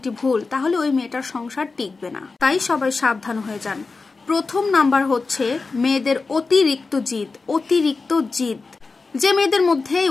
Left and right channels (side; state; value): right; quieter; 4.1 dB